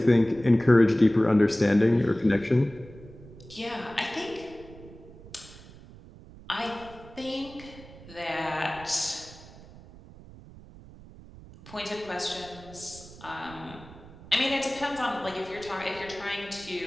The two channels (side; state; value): right; noise; rumble, 19 dB below the sound